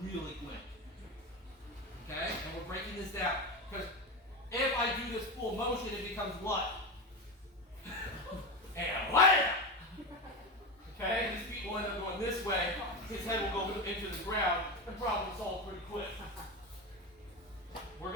really quick. Okay? And we're breaking this down. Because if I do this full motion, it becomes what? And wham! Okay? His feet will end up going this way. His head will go into the ground. And problem solved pretty quick. We're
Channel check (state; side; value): normal; both; correlation 0.19